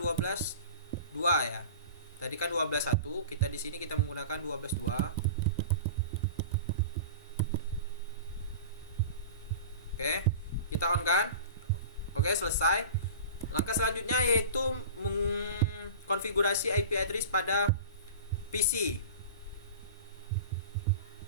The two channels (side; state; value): both; inverted; correlation -0.36